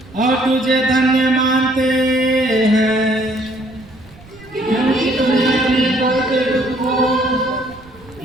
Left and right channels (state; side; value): noise; right; rumble, 23 dB below the sound